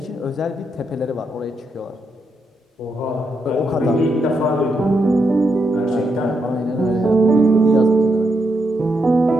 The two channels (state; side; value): normal; both; correlation 0.81